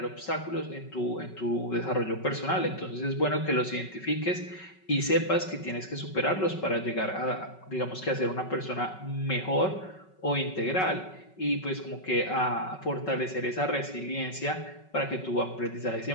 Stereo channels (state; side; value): late; right; 5.3 ms